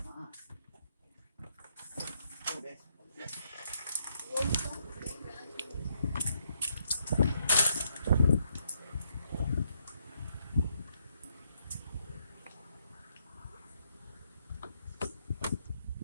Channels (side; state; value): both; inverted; correlation -0.75